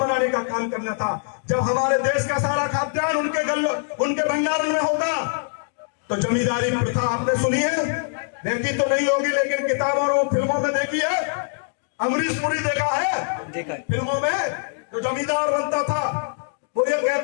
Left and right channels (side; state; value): right; silent; digital silence